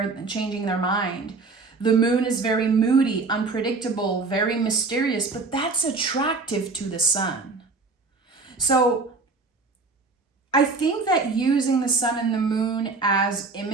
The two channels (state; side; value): quieter; left; 3.9 dB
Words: their mind. The moon is very moody, unpredictable, very mysterious, but that's attractive to the sun. So I think that using the sun and the moon as